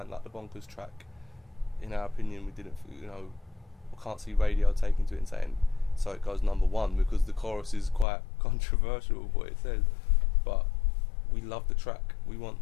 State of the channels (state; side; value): drops out; right; at 8.1 s